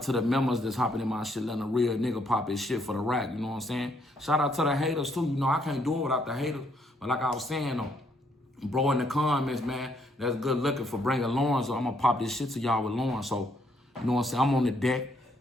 to the members that's hopping in my shit, letting a real nigga pop his shit for the rack. You know what I'm saying? Shout out to the haters too. You know, I can't do it without the haters. But like I was saying though, bro in the comments, man, that's good looking for bringing Lawrence. So I'm gonna pop this shit to y'all with Lawrence. So, you know what I'm saying? I'm on the deck.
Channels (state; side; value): normal; both; correlation 0.71